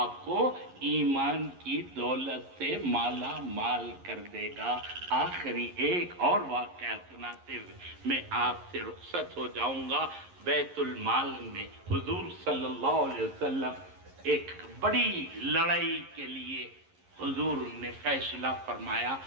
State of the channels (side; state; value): left; late; 11 ms